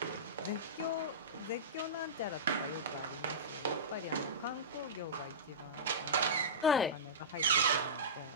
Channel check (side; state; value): both; normal; correlation -0.18